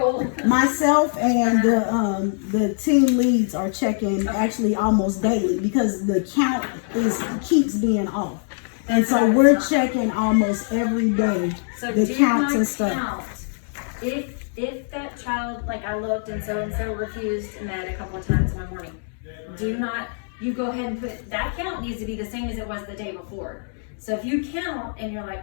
myself and the team leads are checking actually almost daily because the count keeps being off, and so we're checking almost every day So the do counts not and stuff. count. If that child, like I looked and so refused med a couple of times one morning, you go ahead and put, that count needs to be the same as it was the day before. So if you count and you're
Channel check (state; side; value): silent; right; digital silence